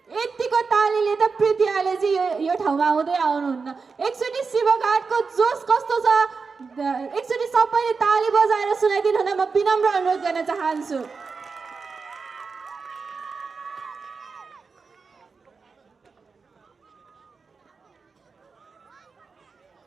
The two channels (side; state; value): left; quieter; 4.8 dB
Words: यतिको तालीले त प्रीति आलेजी यो ठाउँमा आउँदै आउनुहुन्न। एकचोटि शिवघाटको जोस कस्तो छ एकचोटि सबैले ताली बजाएर सुनाइदिनु हुन म विनम्र अनुरोध गर्न चाहन्छु।